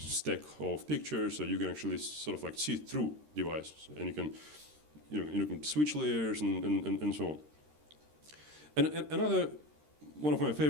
of pictures, so you can actually sort of like see through devices, and you can, you can switch layers and so on. And another one of my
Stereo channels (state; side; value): late; left; 13 ms